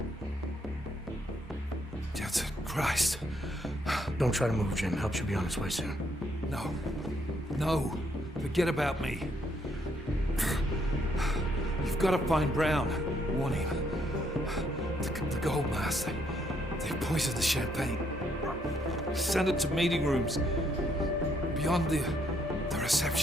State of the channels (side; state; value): both; normal; correlation 0.72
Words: Jensen, Christ. Don't try to move, Jim. Help should be on its way soon. No. No. Forget about me. You've got to find Brown. Warn him. The gold mask. They poisoned the champagne. Send it to meeting rooms. Beyond the